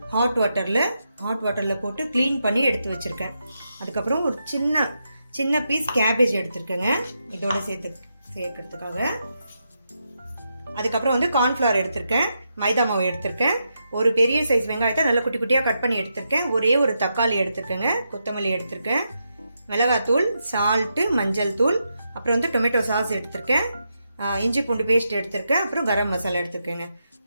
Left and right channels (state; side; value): inverted; both; correlation -0.84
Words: ஹாட் வாட்டரில் போட்டு க்ளீன் பண்ணி எடுத்து வச்சுருக்கேன். அதுக்கப்புறம் ஒரு சின்ன பீஸ் கேபேஜ் எடுத்திருக்கேங்க இதோட சேர்க்கறதுக்காக. அதுக்கப்புறம் வந்து கார்ன்ஃப்ளவர் எடுத்திருக்கேன், மைதா மாவு எடுத்திருக்கேன், ஒரு பெரிய சைஸ் வெங்காயத்தை நல்லா குட்டி குட்டியாக கட் பண்ணி எடுத்திருக்கேன், ஒரே ஒரு தக்காளி எடுத்திருக்கேங்க, கொத்தமல்லி எடுத்திருக்கேன், மிளகாத்தூள், சால்ட்டு, மஞ்சள் தூள், அப்புறம் வந்து டொமேட்டோ சாஸ் எடுத்திருக்கேன், இஞ்சி பூண்டு பேஸ்ட் எடுத்திருக்கேன், அப்புறம் கரம் மசாலா எடுத்திருக்கேங்க.